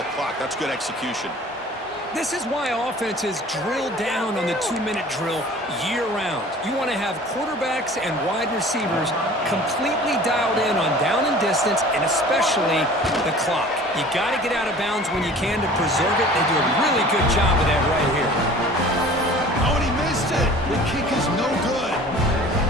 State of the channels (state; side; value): normal; both; correlation 0.45